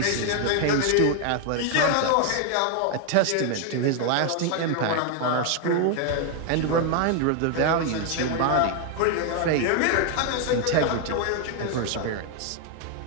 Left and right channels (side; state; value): both; different; correlation 0.00